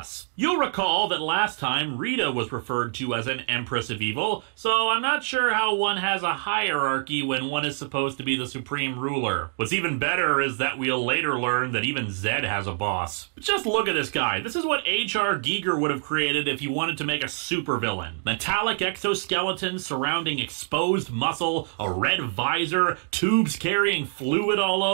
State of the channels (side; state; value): left; silent; 61 dB below the other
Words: You'll recall that last time Rita was referred to as an Empress of Evil, so I'm not sure how one has a hierarchy when one is supposed to be the supreme ruler. What's even better is that we'll later learn that even Zed has a boss. Just look at this guy. This is what H.R. Giger would have created if he wanted to make a supervillain. Metallic exoskeleton surrounding exposed muscle, a red visor, tubes carrying fluid all